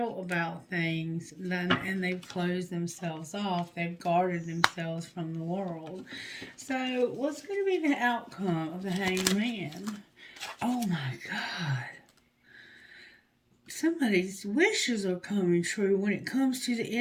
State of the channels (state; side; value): identical; both; correlation 1.00